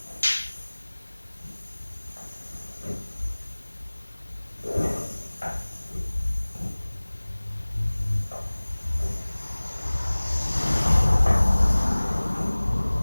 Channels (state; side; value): inverted; both; correlation -1.00